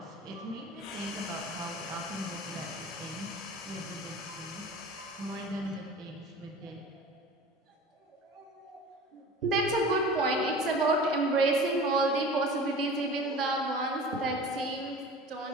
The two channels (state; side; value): normal; both; correlation 0.39